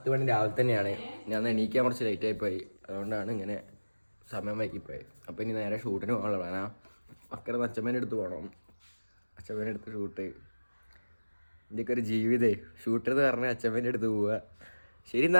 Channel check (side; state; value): both; inverted; correlation -1.00